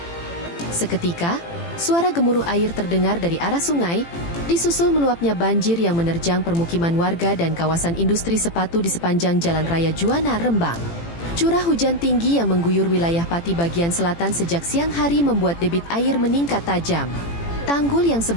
Seketika, suara gemuruh air terdengar dari arah sungai, disusul meluapnya banjir yang menerjang permukiman warga dan kawasan industri sepatu di sepanjang Jalan Raya Juwana, Rembang. Curah hujan tinggi yang mengguyur wilayah Pati bagian selatan sejak siang hari membuat debit air meningkat tajam. Tanggul yang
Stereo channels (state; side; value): late; right; 18 ms